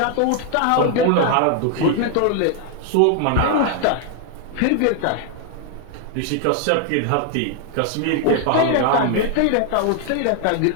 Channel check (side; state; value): both; different; correlation 0.00